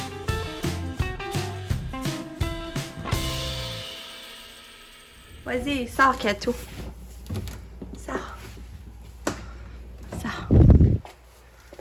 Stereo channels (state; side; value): identical; both; correlation 1.00